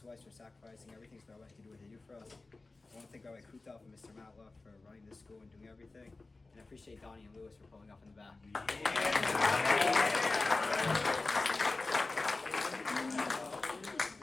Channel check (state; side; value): quieter; right; 3.4 dB